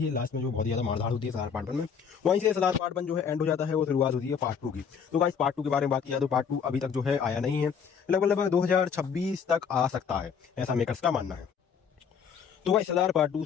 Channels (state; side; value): quieter; right; 6.8 dB